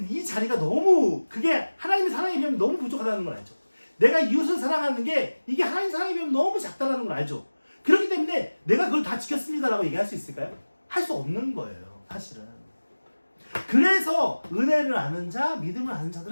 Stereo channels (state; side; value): inverted; both; correlation -1.00